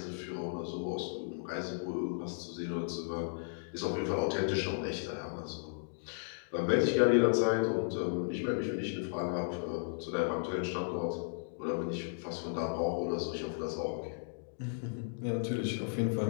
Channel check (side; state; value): right; silent; digital silence